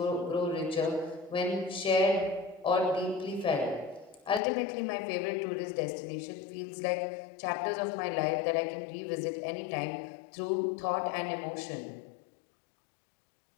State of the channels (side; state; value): right; drops out; at 4.4 s